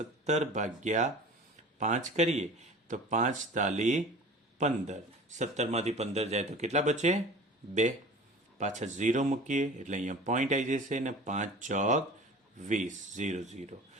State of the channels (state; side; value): normal; both; correlation 0.40